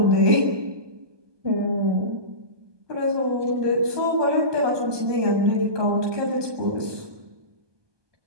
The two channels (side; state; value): left; late; 1.2 ms